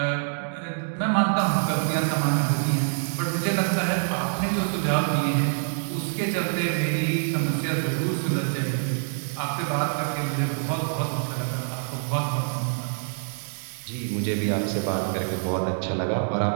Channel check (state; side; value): silent; left; digital silence